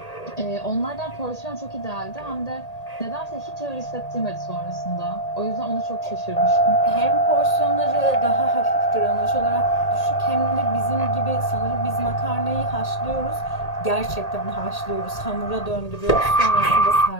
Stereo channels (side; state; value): right; late; 1.8 ms